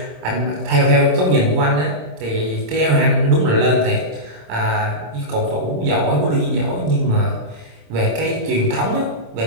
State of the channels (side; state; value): left; late; 26 ms